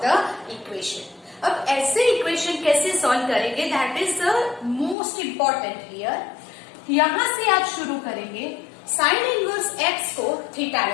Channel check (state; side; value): drops out; right; at 5.0 s